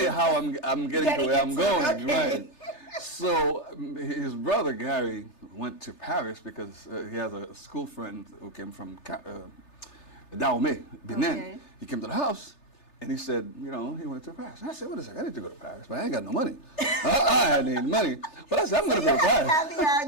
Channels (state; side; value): late; right; 3.3 ms